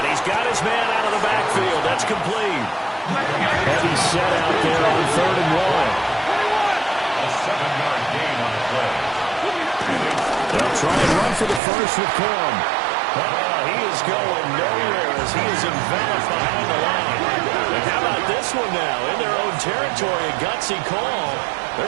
he's got his man out of the backfield. That's complete. Heavy set out there on 3rd and 1. A 7-yard gain on the play. They'll try and run for the first with Corum. Oh, he is going nowhere as he is enveloped behind the line. And how about this one now? In their own territory, a gutsy call.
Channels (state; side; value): drops out; left; at 11.6 s